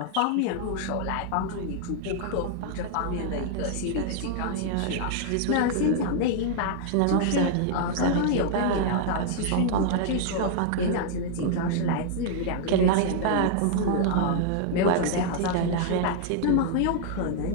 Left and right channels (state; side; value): different; both; correlation -0.01